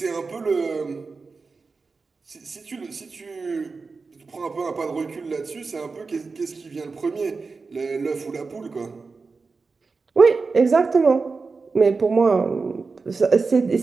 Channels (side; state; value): left; quieter; 4.4 dB